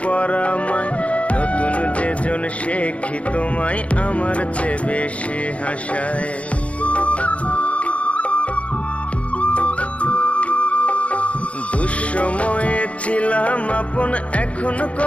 পরামায়। নতুন যেজন শেখি তোমায় আমার চেয়ে বেশি হাসায়। দুঃসময়ে ছিলাম আপন, এখন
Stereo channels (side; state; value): right; late; 0.064 ms